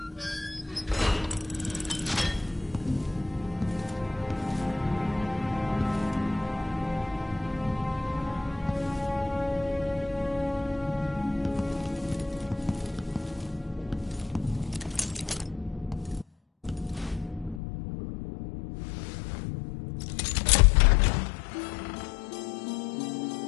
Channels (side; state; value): right; drops out; at 17.6 s